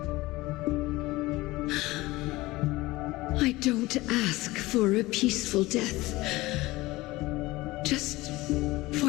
I don't ask for a peaceful death, just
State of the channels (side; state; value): right; quieter; 19.8 dB